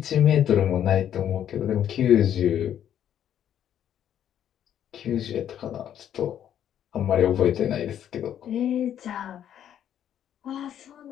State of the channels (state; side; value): quieter; right; 10.1 dB